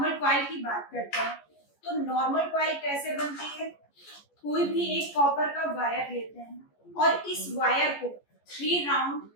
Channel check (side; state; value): right; late; 14 ms